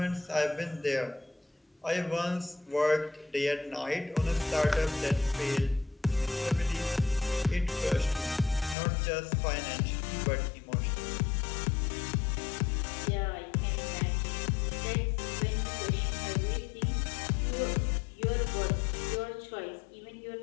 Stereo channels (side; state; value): right; drops out; at 8.8 s